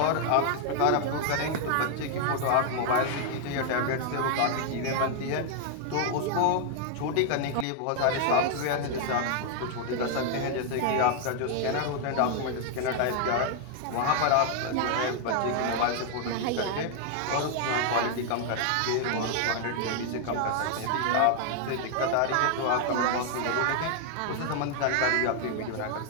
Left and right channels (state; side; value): different; both; correlation 0.00